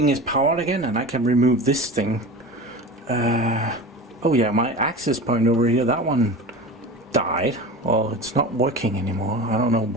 is powered again, and I can remove this thing. Oh yeah, my access point over here, that one died. Well, it's not working anymore. I don't know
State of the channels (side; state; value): both; normal; correlation 0.31